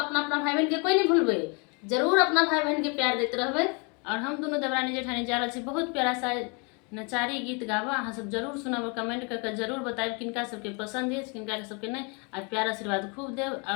भाई बहन के कोई नहीं भूलबै, जरूर अपना भाई बहन के प्यार देते रहबै। और हम दोनों देवरानी जेठानी जा रहल छी बहुत प्यारा सा नचारी गीत गाबा। अहाँ सब जरूर सुनब, कमेंट करके जरूर बताएब किनका सबके पसंद है, किनका सबके नहीं। और प्यार आशीर्वाद खूब देव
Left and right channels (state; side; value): quieter; right; 33.1 dB